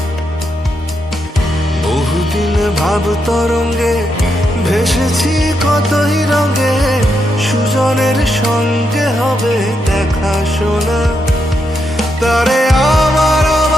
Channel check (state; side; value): normal; both; correlation 0.82